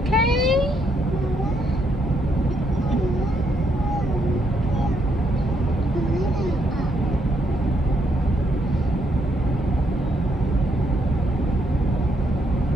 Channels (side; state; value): both; normal; correlation 0.75